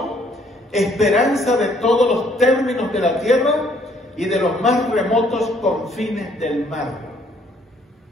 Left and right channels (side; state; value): both; normal; correlation 0.64